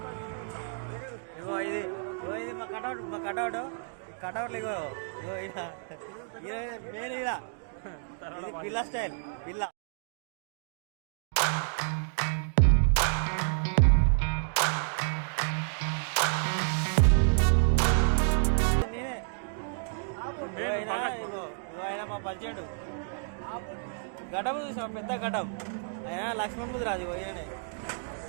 ఇగో ఇది మా కటౌట్ ఇగో మెయిన్ పిల్ల స్టైల్ పిల్ల. ఆయన మా పరిచయుడు ఘటం చూసాం, పెద్ద ఘటం. ఆయన లక్ష్మణ్ ముద్రాజు ఈయనే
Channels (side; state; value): left; silent; digital silence